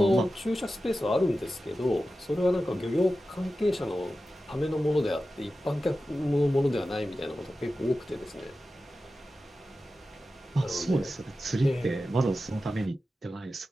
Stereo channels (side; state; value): both; normal; correlation 0.93